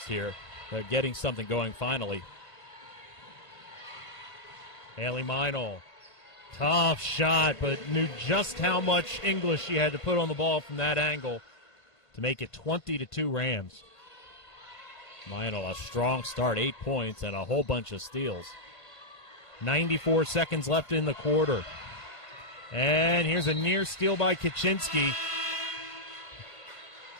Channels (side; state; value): right; late; 1.5 ms